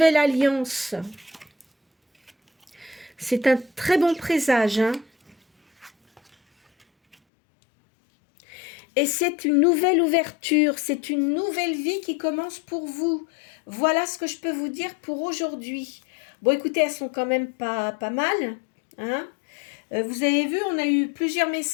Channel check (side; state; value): right; drops out; at 7.2 s